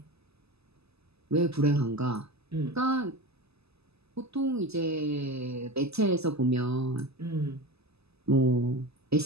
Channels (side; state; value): left; late; 0.79 ms